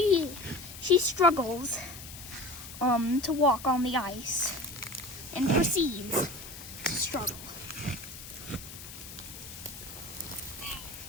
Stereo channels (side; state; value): left; noise; hiss, 13 dB below the sound